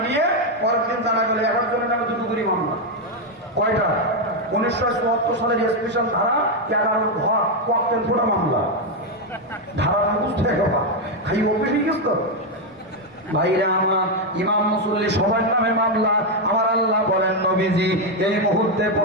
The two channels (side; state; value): both; normal; correlation 0.04